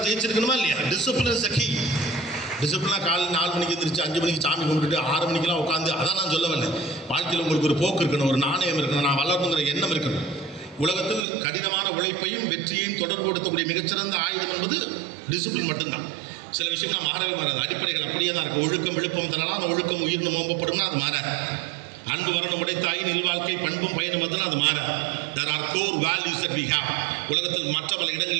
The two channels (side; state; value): left; drops out; at 11.2 s